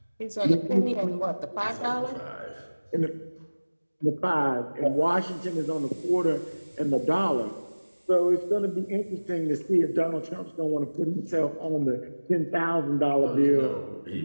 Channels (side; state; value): both; inverted; correlation -1.00